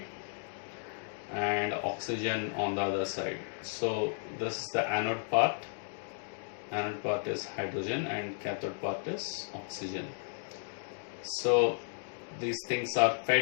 and oxygen on the other side. So this is the anode part. Anode part is hydrogen and cathode part is oxygen. So these things are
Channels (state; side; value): silent; right; digital silence